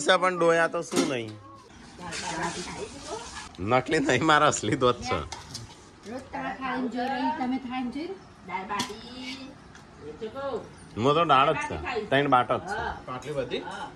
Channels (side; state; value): both; identical; correlation 1.00